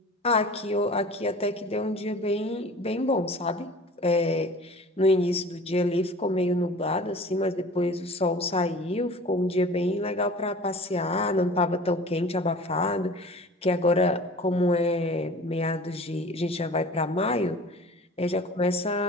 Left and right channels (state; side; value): normal; both; correlation 0.42